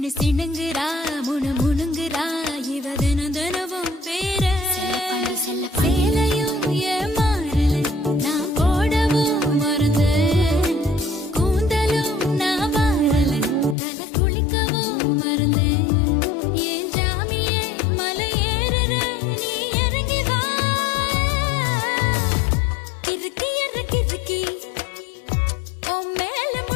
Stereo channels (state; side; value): drops out; right; at 13.8 s